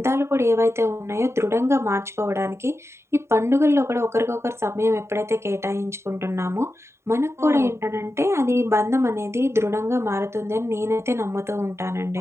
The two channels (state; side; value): late; left; 0.13 ms